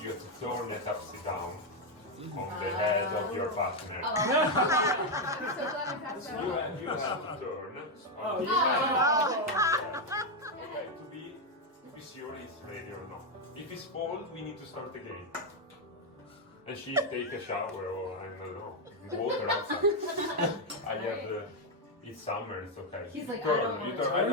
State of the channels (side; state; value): both; normal; correlation 0.04